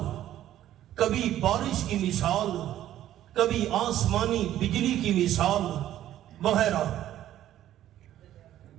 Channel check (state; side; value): quieter; left; 12.5 dB